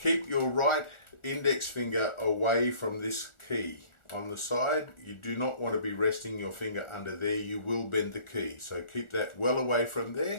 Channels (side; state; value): right; late; 1.4 ms